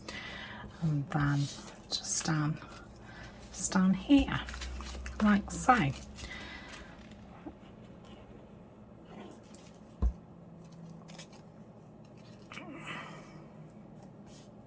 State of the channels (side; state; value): both; identical; correlation 1.00